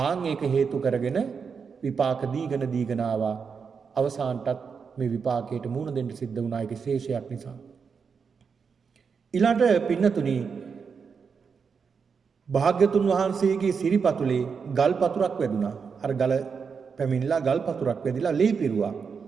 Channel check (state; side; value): quieter; left; 5.9 dB